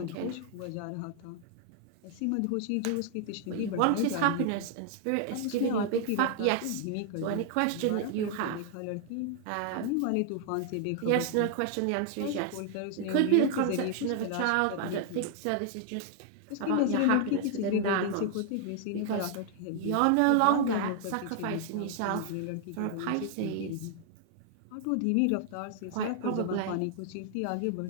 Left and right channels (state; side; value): different; both; correlation 0.00